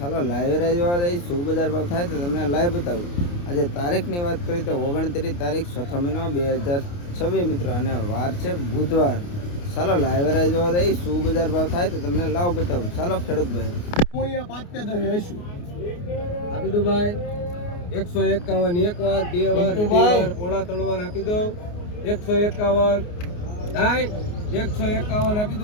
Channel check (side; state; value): right; late; 29 ms